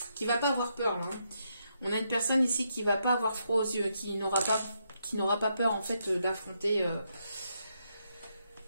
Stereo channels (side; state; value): both; inverted; correlation -0.79